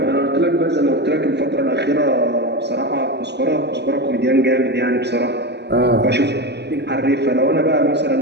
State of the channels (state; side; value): late; left; 0.50 ms